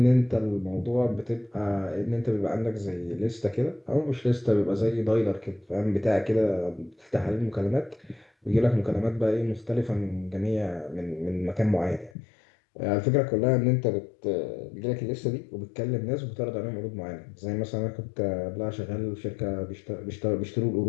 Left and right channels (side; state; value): right; drops out; at 12.1 s